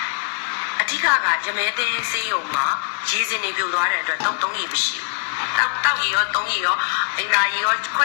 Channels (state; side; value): silent; right; 62 dB below the other